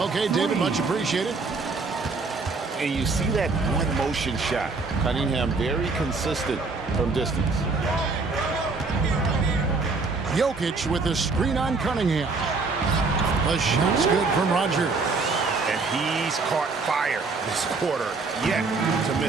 David, much appreciated. And you see that one motion shot. Cunningham very consistent from distance. Jokic with the screen on Cunningham. The shot's good from Rodgers. And he's caught fire this quarter, yet to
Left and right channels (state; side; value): quieter; left; 4.1 dB